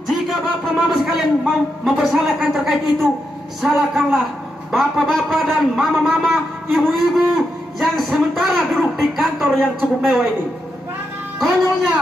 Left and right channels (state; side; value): normal; both; correlation 0.84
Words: jika Bapak Mama sekalian mau mempersalahkan terkait itu, salahkanlah bapak-bapak dan mama-mama, ibu-ibu yang sementara duduk di kantor yang cukup mewah ini.